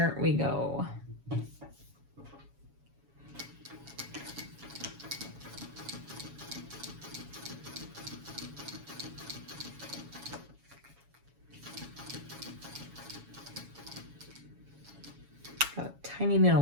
we go. Got a tiny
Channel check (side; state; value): left; late; 7.2 ms